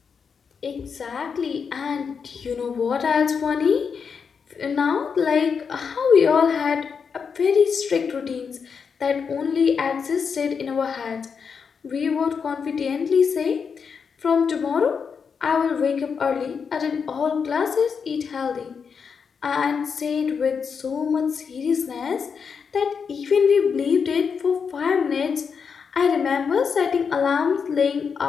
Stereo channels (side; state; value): right; quieter; 6.1 dB